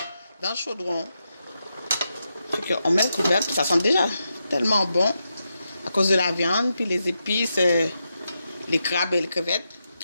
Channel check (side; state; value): both; inverted; correlation -0.86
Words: le chaudron. On met le couvercle, puis ça sent déjà tellement bon à cause de la viande, puis les épices, les crabes et les crevettes.